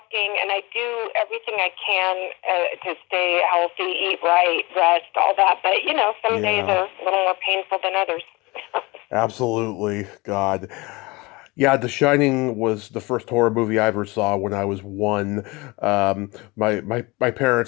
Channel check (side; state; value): right; quieter; 23.9 dB